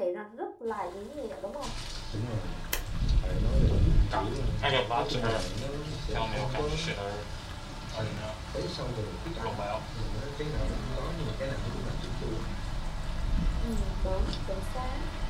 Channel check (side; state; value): both; identical; correlation 1.00